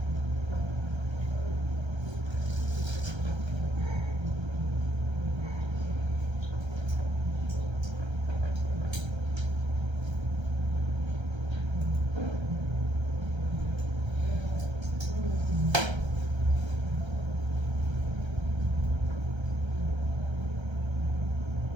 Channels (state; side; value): late; left; 1.3 ms